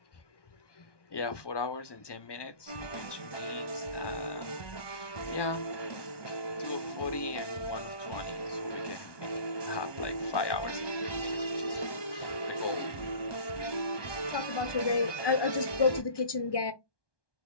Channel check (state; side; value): late; right; 1.2 ms